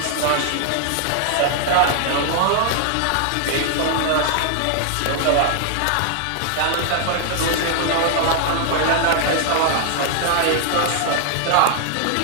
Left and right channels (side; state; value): both; different; correlation 0.00